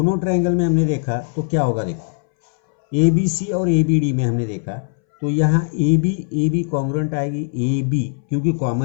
ट्रायंगल में हमने देखा तो क्या होगा, देखो ए बी सी और ए बी डी में हमने देखा तो यहाँ ए बी कॉन्ग्रुएंट आएगी, ए बी क्योंकि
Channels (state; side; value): silent; right; 63 dB below the other